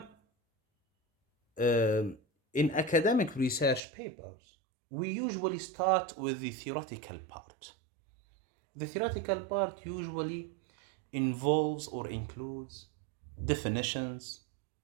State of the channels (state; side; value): drops out; left; at 3.8 s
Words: in academic research papers, we usually start with the theoretical part. The theoretical part usually involves or includes definitions,